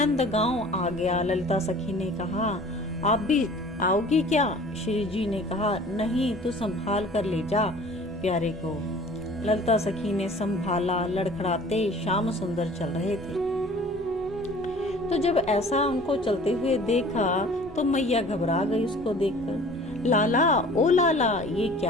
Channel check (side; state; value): both; normal; correlation 0.47